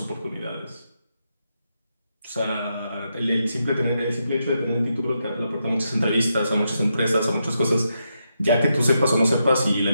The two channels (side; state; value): both; inverted; correlation -0.83